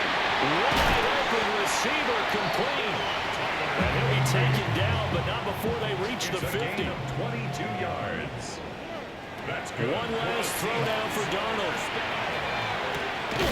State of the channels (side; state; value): both; identical; correlation 1.00